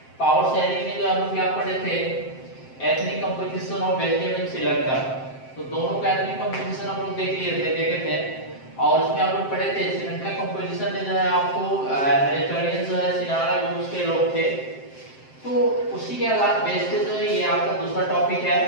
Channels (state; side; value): late; right; 7.6 ms